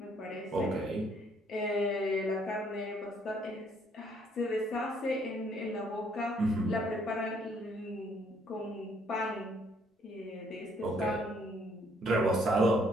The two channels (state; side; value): normal; both; correlation 0.66